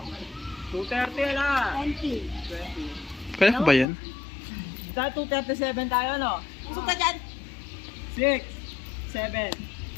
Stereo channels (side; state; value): right; drops out; at 3.9 s